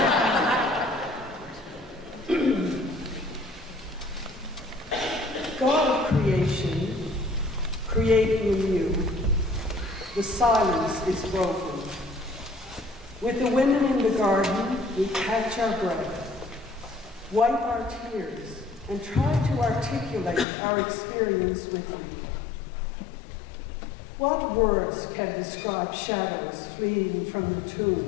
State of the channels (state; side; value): drops out; right; at 20.5 s